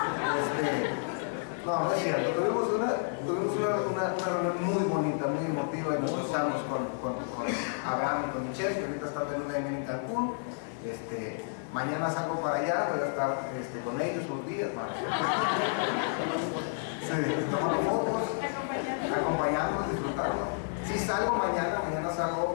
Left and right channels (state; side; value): silent; right; 57 dB below the other